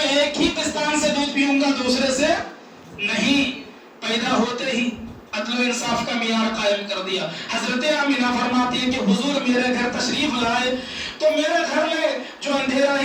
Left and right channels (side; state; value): both; identical; correlation 1.00